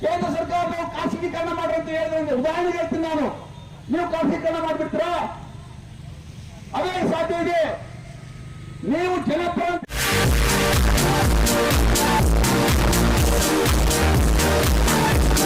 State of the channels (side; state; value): both; identical; correlation 1.00